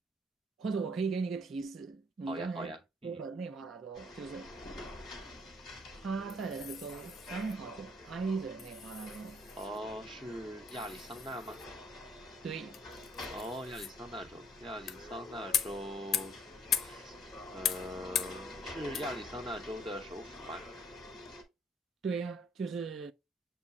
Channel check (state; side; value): normal; both; correlation 0.61